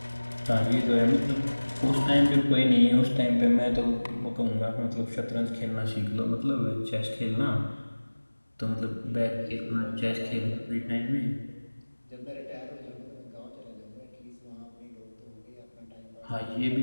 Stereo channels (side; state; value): both; inverted; correlation -1.00